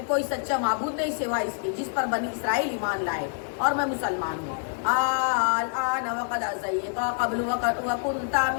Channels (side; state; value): right; silent; 60 dB below the other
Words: کوئی سچا معبود نہیں سوائے اس کے جس پر بنی اسرائیل ایمان لائے اور میں مسلمان ہوں۔ الآن وقد عصیت قبل وکنت